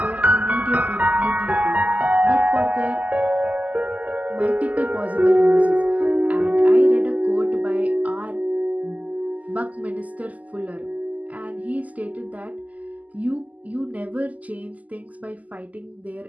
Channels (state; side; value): late; left; 0.076 ms